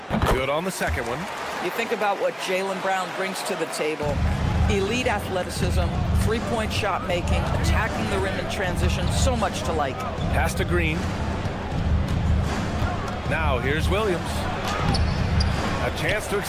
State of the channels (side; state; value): both; identical; correlation 1.00